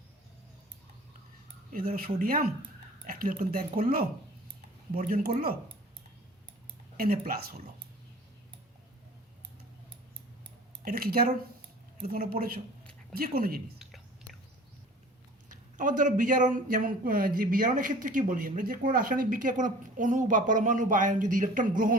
সোডিয়াম একটা ইলেকট্রন ত্যাগ করলো, বর্জন করলো, Na+ হলো। এটা কি জারণ? এটা তোমরা পড়েছো, যে কোনো জিনিস। আবার ধরো বিজারণ, যেমন যে বিজারণের ক্ষেত্রে কী বলি আমরা, যে কোনো রাসায়নিক বিক্রিয়া কোনো অণু বা পরমাণু বা আয়ন যদি ইলেকট্রন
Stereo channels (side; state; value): both; normal; correlation 0.45